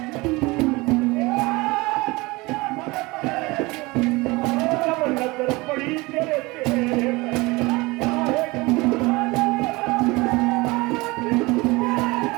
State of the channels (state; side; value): quieter; left; 23.1 dB